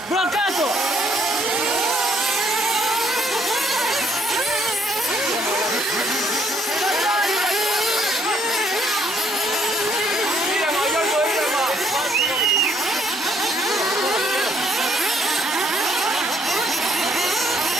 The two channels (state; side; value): normal; both; correlation 0.67